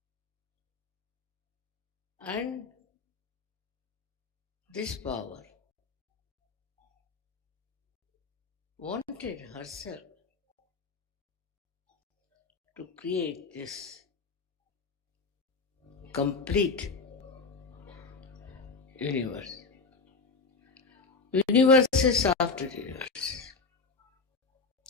And this power wanted herself to create this complete universe. Universe is after universe.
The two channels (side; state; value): right; quieter; 4.3 dB